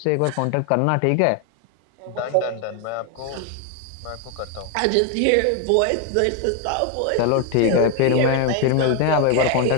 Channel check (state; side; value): different; both; correlation 0.01